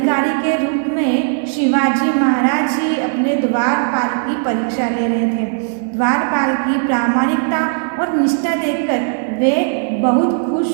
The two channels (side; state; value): left; silent; 57 dB below the other